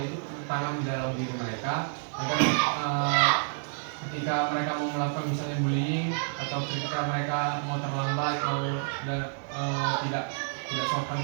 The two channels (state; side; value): silent; left; 58 dB below the other